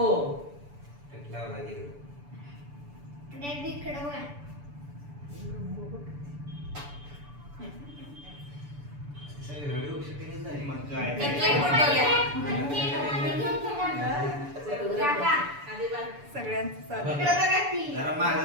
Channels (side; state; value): left; late; 6.9 ms